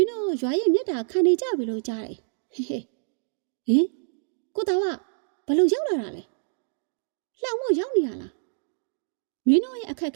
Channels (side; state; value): left; silent; digital silence